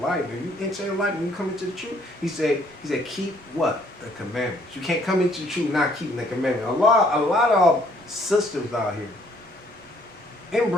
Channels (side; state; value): right; noise; rumble, 29 dB below the sound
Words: and you enter in life and you come into the truth, he said, keep what? The commandments. You can't come into the truth not keeping the commandments. A lot of sisters out here, and